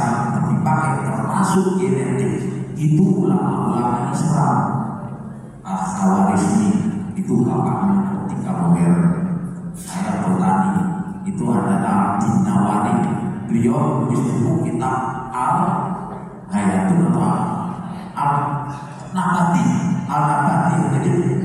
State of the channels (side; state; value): both; identical; correlation 1.00